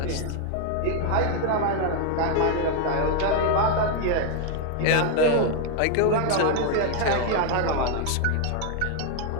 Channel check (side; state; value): both; different; correlation 0.00